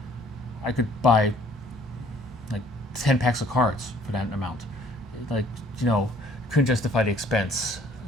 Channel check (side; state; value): both; normal; correlation 0.58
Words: I could buy like 10 packs of cards for that amount. Like couldn't justify the expense